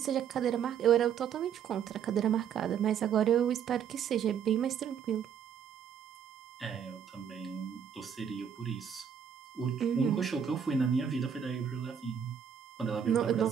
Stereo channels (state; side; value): quieter; left; 8.1 dB